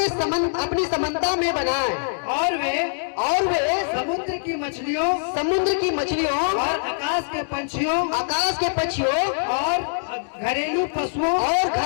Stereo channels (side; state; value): right; silent; digital silence